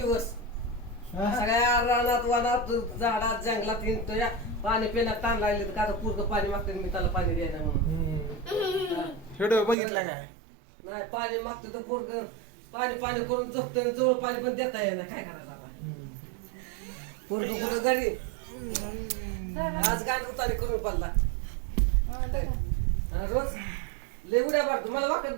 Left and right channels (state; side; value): drops out; left; at 9.8 s